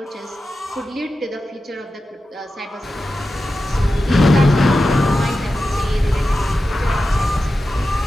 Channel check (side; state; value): both; normal; correlation 0.92